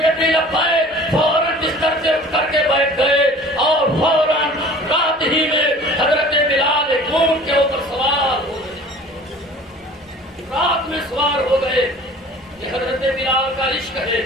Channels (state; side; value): normal; both; correlation 0.46